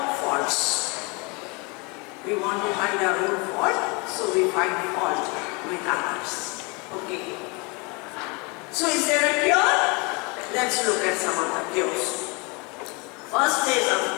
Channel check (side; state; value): right; quieter; 29.6 dB